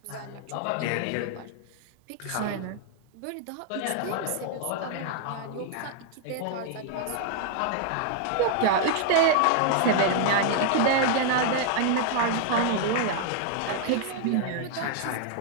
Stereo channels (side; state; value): both; different; correlation 0.00